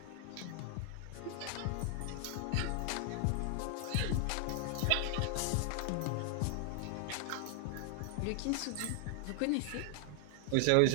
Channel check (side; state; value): both; different; correlation 0.00